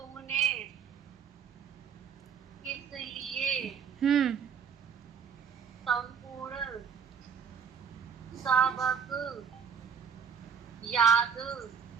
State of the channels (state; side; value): quieter; left; 6.9 dB